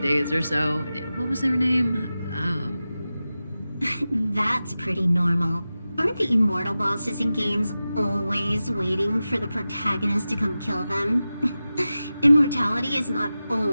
days or so? What was their name? That's pretty normal. Aren't the immortal bosses in games always waiting for the protagonist to come kill them? Immortality is not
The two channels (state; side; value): inverted; both; correlation -0.94